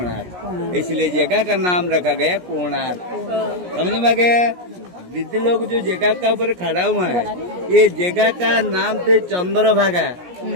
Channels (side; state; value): left; late; 17 ms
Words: इसलिए जगह का नाम रखा गया कोणार्क। समझ में गया? दीदी लोग जो जगह का ऊपर खड़ा हुआ है, ये जगह का नाम थे चंद्रभागा।